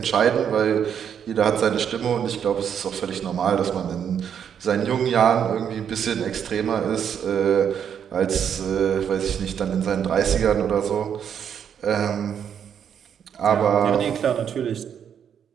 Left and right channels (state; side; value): quieter; left; 8.3 dB